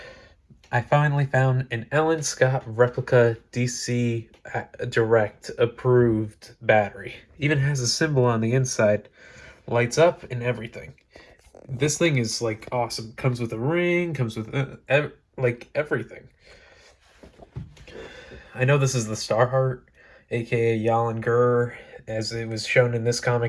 I finally found an Alan Scott replica DC Direct approved battery. Even has a symbol on the inside, lights up and everything. This thing is like awesome. Comes with a ring, comes with like everything. I know this is the Starheart, aka Yalen Gur, as it was shown in this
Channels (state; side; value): identical; both; correlation 1.00